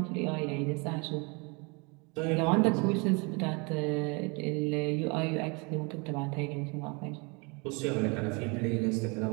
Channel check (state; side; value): quieter; left; 30.3 dB